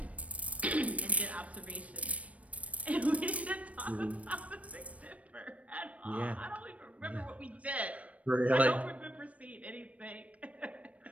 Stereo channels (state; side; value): late; left; 0.066 ms